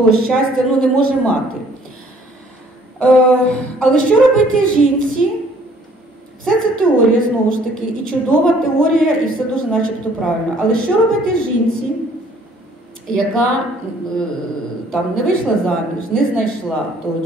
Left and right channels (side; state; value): both; normal; correlation 0.59